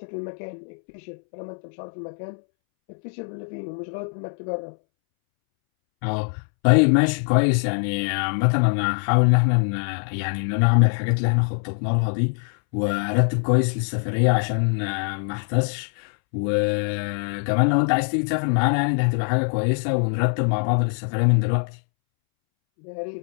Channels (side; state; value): right; silent; 64 dB below the other